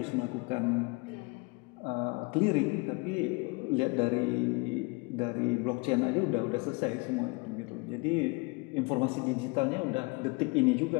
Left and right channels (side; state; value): right; quieter; 28.2 dB